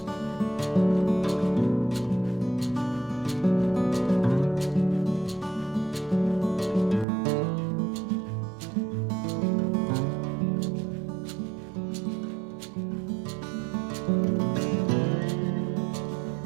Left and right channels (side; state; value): left; drops out; at 7.1 s